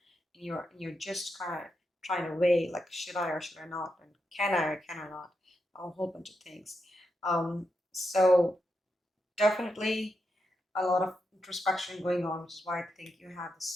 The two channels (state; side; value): normal; both; correlation 0.85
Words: you're just kind of trying to weigh like, should I or should I not, and can I or can I not, a whole bunch of things. So definitely a lot of introspection going on, which is why I think you have